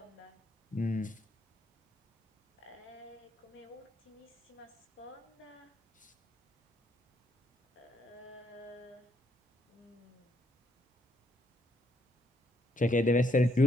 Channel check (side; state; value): both; normal; correlation 0.73